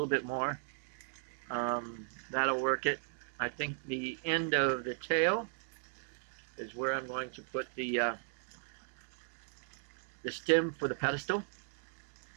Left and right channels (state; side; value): silent; left; digital silence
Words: bit more. That'll work it. I think the end of the tail is where I'm going to put the stem for the pedestal.